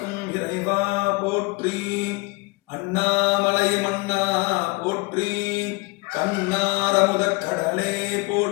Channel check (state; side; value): quieter; right; 26.3 dB